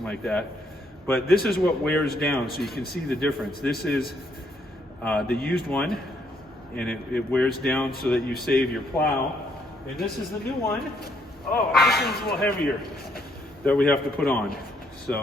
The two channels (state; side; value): normal; both; correlation 0.71